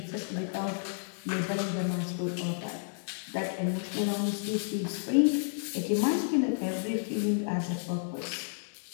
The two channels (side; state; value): right; silent; digital silence